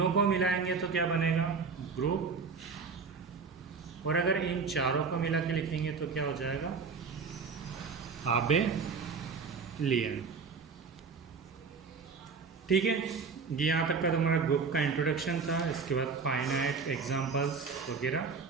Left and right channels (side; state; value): left; quieter; 5.1 dB